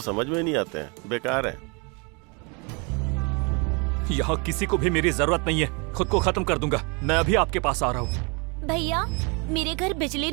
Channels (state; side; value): quieter; left; 32.2 dB